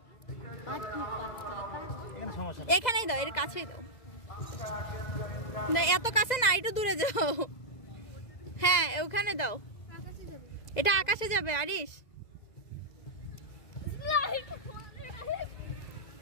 এখানে সমস্যা নেই, এখানেই দাও, এর কাছেই দাও। না এত কাছে না, একটু দূরে যাও। হ্যাঁ ওখানে দাও, এটা আকাশে যাবে। আরিশ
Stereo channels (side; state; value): right; late; 2.0 ms